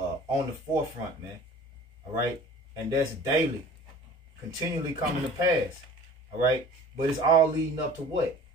the forefront, man. All right, and that's daily, continually coming to pass. All right, but it's all leading up to what?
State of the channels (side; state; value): both; normal; correlation 0.45